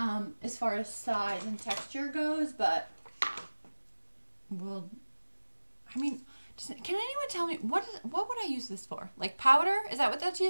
far as size and texture goes, but well, I mean, can anyone tell me what would I use this for? Like powder? Is that what that's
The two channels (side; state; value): both; inverted; correlation -1.00